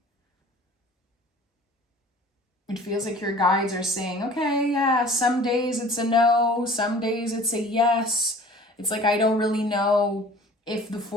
It feels like your guides are saying, okay, yeah, some days it's a no, some days it's a yes. It's like I don't really know if the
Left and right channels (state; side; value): normal; both; correlation 0.47